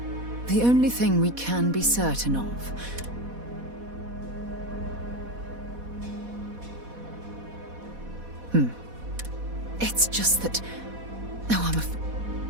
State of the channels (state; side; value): late; left; 4.1 ms